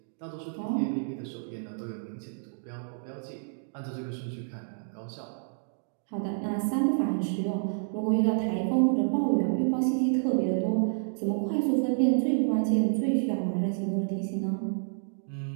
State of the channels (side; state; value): left; silent; digital silence